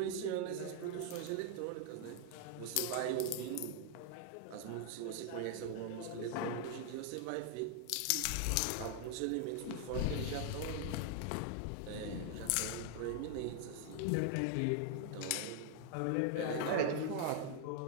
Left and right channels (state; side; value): different; both; correlation 0.00